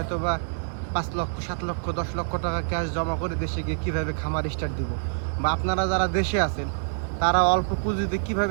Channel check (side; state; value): left; silent; digital silence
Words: বা 5 লক্ষ 7 লক্ষ 10 লক্ষ টাকা ক্যাশ জমা করে দেশে গিয়ে কিভাবে খামার স্টার্ট দিব, বা আপনারা যারা দেশে আছেন তারা অল্প পুঁজিতে